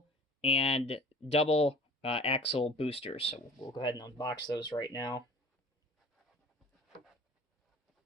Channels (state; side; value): normal; both; correlation 0.45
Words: and double axle boosters. So we'll go ahead and unbox those right now.